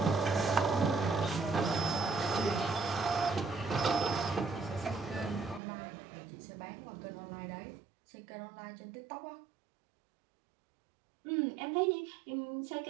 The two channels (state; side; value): drops out; left; at 5.6 s